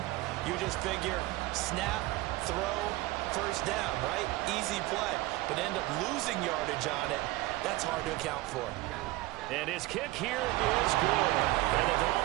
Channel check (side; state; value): left; quieter; 18.8 dB